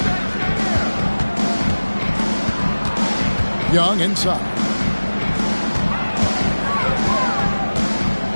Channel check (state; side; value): inverted; both; correlation -1.00